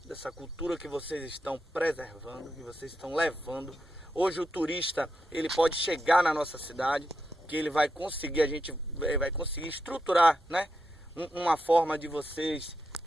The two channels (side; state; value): both; normal; correlation 0.86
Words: dessa cultura que vocês estão preservando, que vocês estão levando. Hoje o turista, ele pode chegar na nossa cidade, que ele vai conseguir, a gente vai conseguir estruturar, né, uma forma de vocês